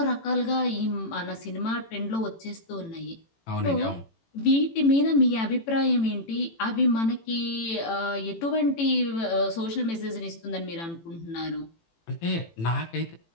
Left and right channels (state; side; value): late; right; 18 ms